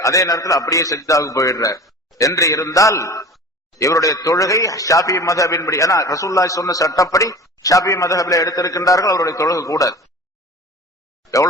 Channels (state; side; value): normal; both; correlation 0.38